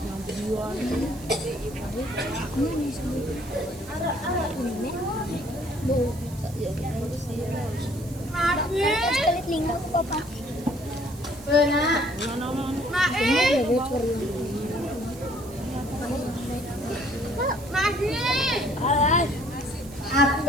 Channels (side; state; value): right; noise; hiss, 19 dB below the sound